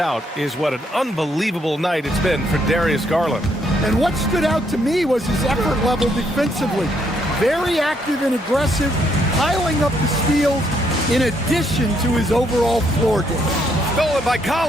is what an unbelievable night it's been for Darius Garland. And what stood out to me was his effort level defensively. Very active and aggressive, piling up the steals in addition to his overall floor game. Stolen by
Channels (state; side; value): normal; both; correlation 0.73